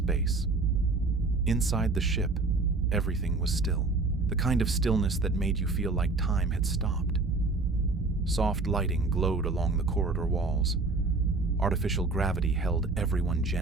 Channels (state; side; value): quieter; left; 3.6 dB